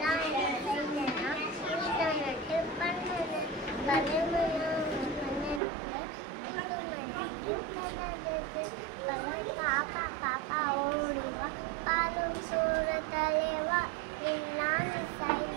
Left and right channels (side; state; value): left; drops out; at 5.6 s